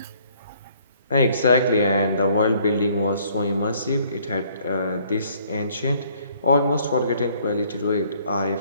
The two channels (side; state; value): both; inverted; correlation -0.62